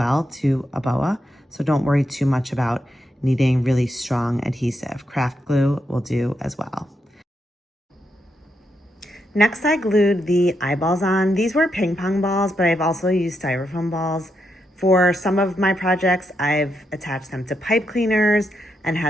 to a boa, so don't worry too much about needing really strong adhesive. Craft glue will do as well. Next, I glued the eyeballs on. These were ping pong balls, but I've also used styrofoam balls. For some of my projects, I've attached them to pipe cleaners and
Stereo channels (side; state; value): both; normal; correlation 0.82